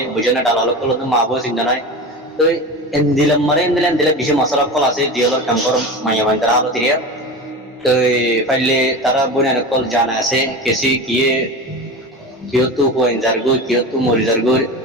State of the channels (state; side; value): normal; both; correlation 0.28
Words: বুঝে না ডালালো কল তো মা বউ চিন্তা নাই তো এন্দিলা বেশি মশলা কল আছে জিয়ালর কাম কর মাইয়া হয় তারা আলো তিরিয়া তো ফাইলে তারা বনে কল জানা আছে কেসি কিয়ে কিয়তু পয়েন্টার গো কিয়তু মরিজার গো